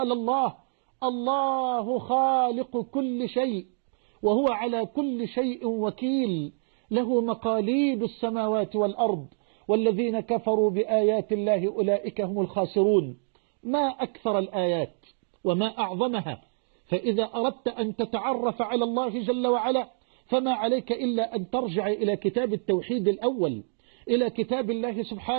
الله خالق كل شيء وهو على كل شيء وكيل، له مقاليد السماوات والأرض والذين كفروا بآيات الله أولئك هم الخاسرون. ما أكثر الآيات وما أعظمها. فإذا أردت أن تتعرف على الله جل وعلا فما عليك إلا أن ترجع إلى كتاب التوحيد الأول، إلى كتاب الله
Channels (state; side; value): silent; left; digital silence